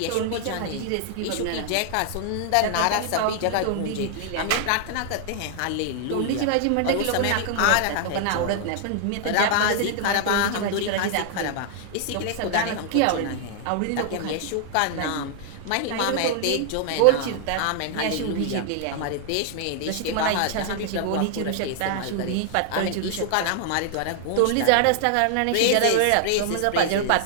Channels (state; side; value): different; both; correlation 0.00